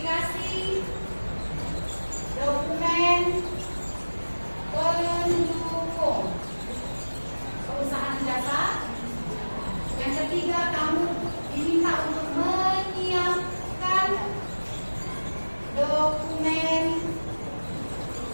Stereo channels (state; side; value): inverted; both; correlation -1.00